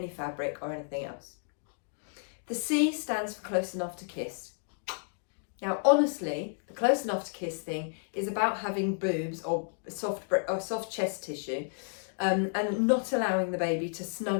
fabric or anything else. The C stands for close enough to kiss. Now, honestly, the close enough to kiss thing is about having boobs or soft chest tissue and not allowing the baby to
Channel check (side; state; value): right; silent; digital silence